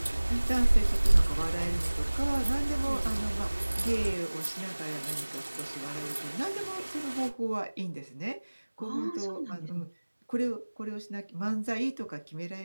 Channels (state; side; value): inverted; both; correlation -1.00